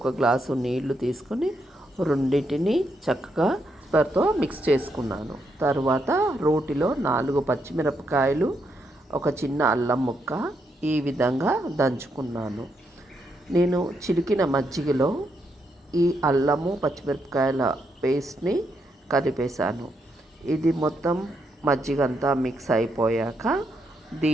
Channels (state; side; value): normal; both; correlation 0.79